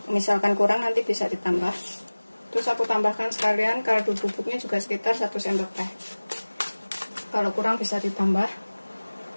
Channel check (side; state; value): both; inverted; correlation -1.00